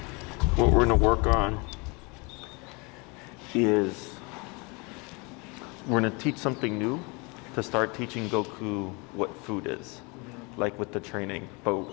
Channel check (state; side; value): quieter; right; 29.1 dB